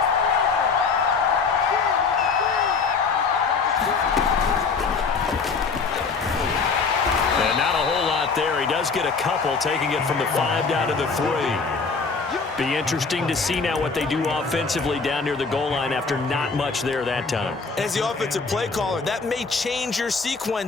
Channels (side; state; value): right; quieter; 4.8 dB